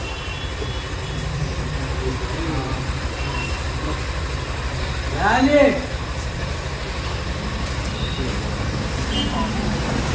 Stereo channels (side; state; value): both; identical; correlation 1.00